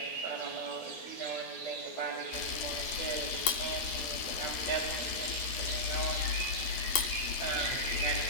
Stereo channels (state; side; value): late; right; 12 ms